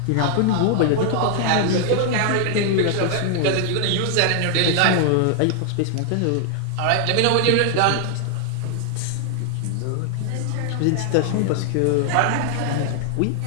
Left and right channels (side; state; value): both; different; correlation 0.00